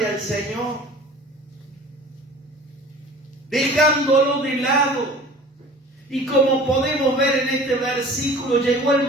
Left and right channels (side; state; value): both; normal; correlation 0.44